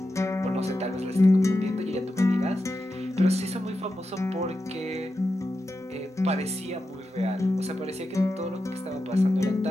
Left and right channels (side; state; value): both; normal; correlation 0.89